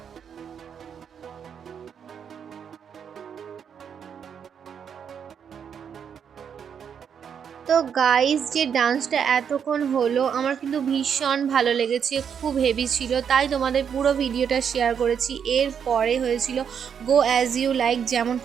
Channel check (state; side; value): quieter; left; 7.6 dB